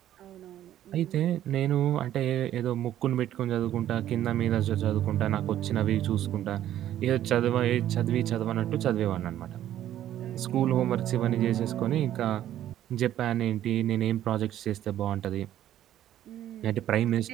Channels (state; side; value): quieter; left; 12.0 dB